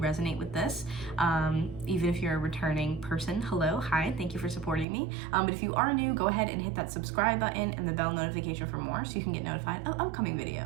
with this. Even if you're a returning person, hello, hi, thank you for supporting me. But if you are new, go ahead and hit that subscribe button and the bell notification for more so you can get notified of upcoming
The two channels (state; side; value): drops out; left; at 4.9 s